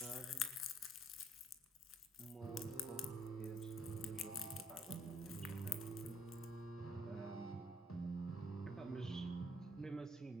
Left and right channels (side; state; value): both; normal; correlation 0.64